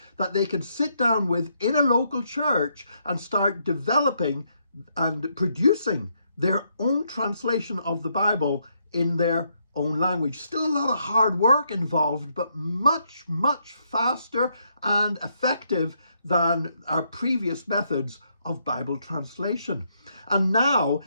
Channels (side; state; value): both; inverted; correlation -0.75